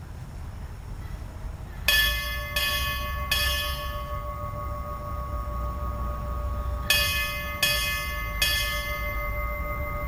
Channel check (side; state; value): both; identical; correlation 1.00